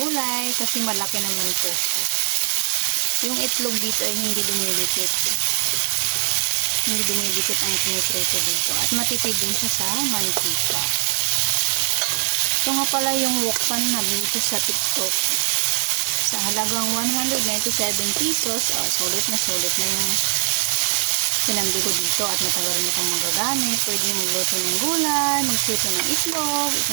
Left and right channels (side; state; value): left; quieter; 38.9 dB